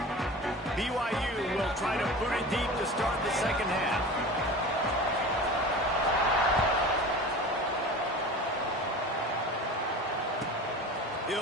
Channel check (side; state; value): both; normal; correlation 0.35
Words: BYU will try to put it deep to start the second half.